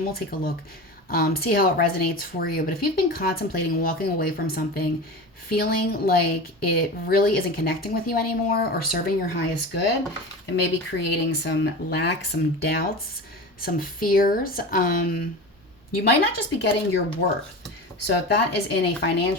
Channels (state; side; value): normal; both; correlation 0.29